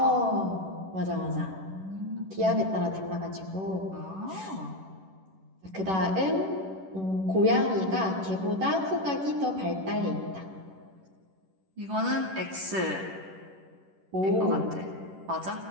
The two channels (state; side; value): late; left; 11 ms